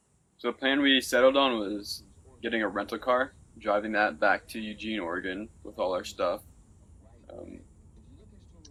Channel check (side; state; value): both; identical; correlation 1.00